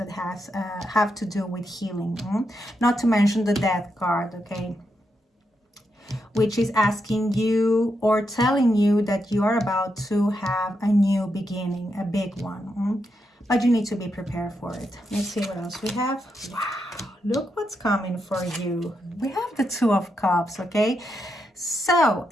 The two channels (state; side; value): normal; both; correlation 0.83